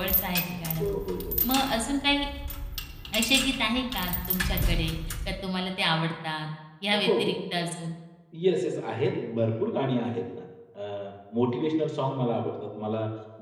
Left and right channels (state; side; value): identical; both; correlation 1.00